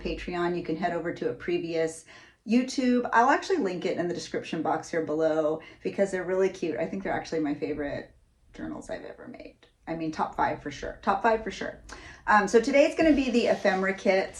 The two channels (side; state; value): both; identical; correlation 1.00